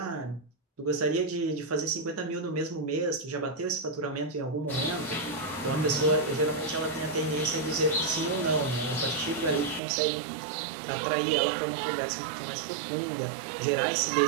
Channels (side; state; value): left; drops out; at 9.8 s